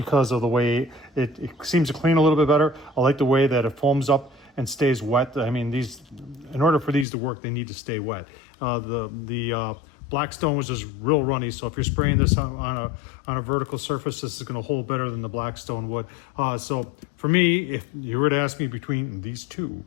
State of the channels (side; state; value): right; drops out; at 7.1 s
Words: of the way it seems to clean a little bit better. I like the way that it foams up and stays wet. I mean, in order for these to work, they need to stay wet. The Blackstone was just real runny, so if you're spraying this on a vertical surface, this is going to hold better than the Blackstone would. So for me, if you were to ask me between these two,